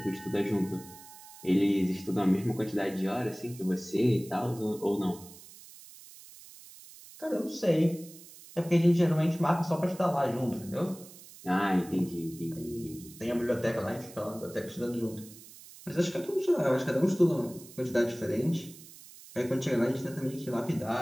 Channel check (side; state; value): right; noise; hiss, 19 dB below the sound